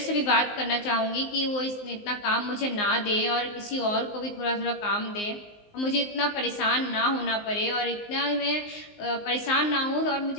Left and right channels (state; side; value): late; right; 19 ms